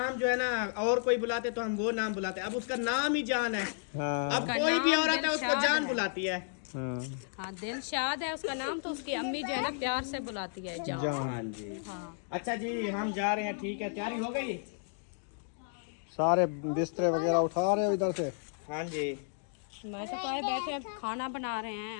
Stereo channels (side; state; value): right; silent; digital silence